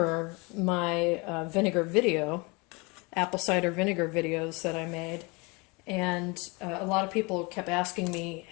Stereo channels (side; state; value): right; quieter; 27.7 dB